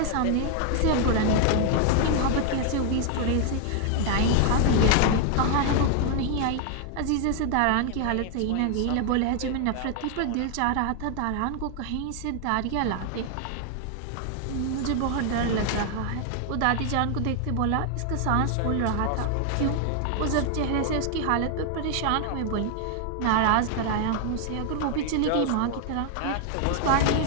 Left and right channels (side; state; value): both; different; correlation 0.00